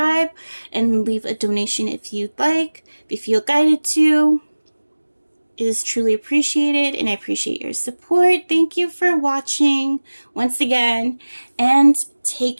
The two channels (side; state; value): both; inverted; correlation -1.00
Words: And leave a donation if you'd like. If you feel guided to. It is truly appreciated, and I appreciate your support. Thank you for watching once again, and take